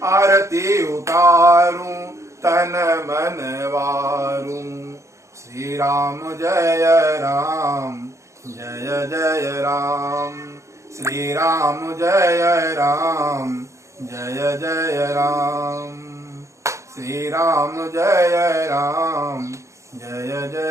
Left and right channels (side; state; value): left; late; 0.14 ms